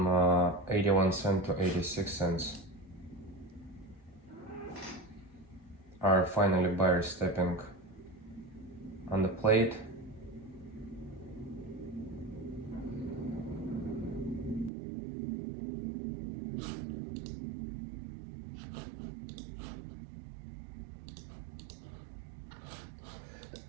81 cents to 86 cents. Are finally buyers stepping on the plate.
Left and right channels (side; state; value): left; drops out; at 14.7 s